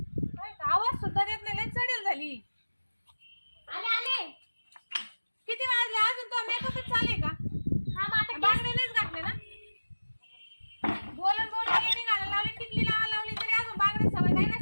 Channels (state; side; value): inverted; both; correlation -1.00